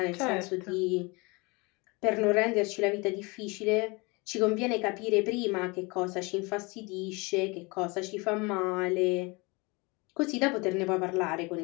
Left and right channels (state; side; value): quieter; right; 26.8 dB